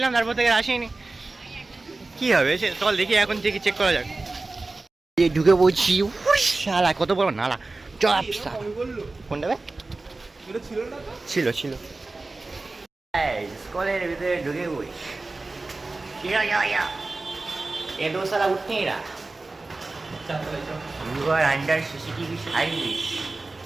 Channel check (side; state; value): left; quieter; 3.3 dB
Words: তারপর থেকে আসিনি। কি হবে সে চল দেখি, এখন থেকে চেক করা যাক। ঢুকে বলছি, শালা কত বড় নালা, চপ কোনটা ছিল স্কুলের ভিতরে ঢুকে বই এ দো সালা উঠতে এরা You are under CCTV service.